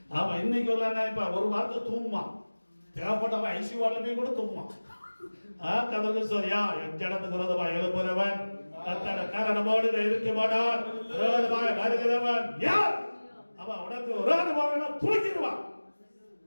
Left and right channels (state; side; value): inverted; both; correlation -1.00